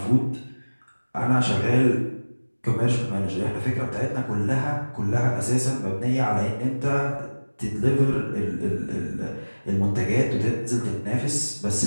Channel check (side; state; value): both; inverted; correlation -1.00